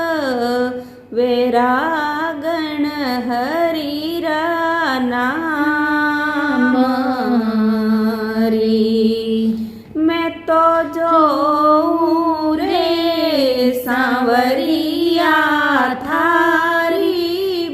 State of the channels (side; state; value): both; identical; correlation 1.00